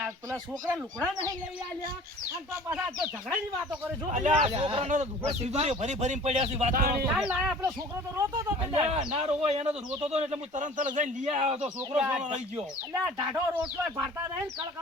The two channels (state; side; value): normal; both; correlation 0.46